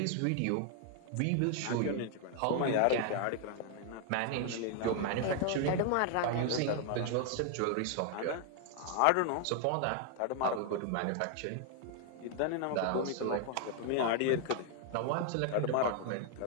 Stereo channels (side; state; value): both; different; correlation 0.00